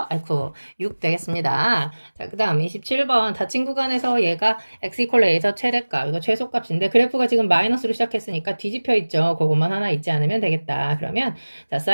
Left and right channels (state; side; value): inverted; both; correlation -1.00